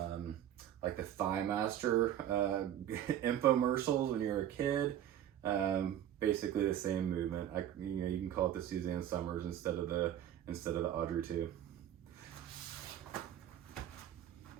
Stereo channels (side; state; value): left; quieter; 10.9 dB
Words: like the Thigh Master infomercials when you were a kid. Basically the same movement. You can call it the Suzanne Summers instead of the Audrey Two.